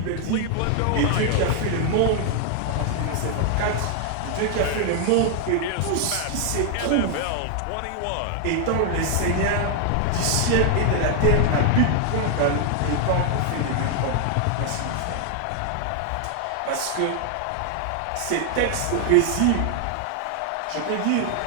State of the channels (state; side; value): different; both; correlation 0.00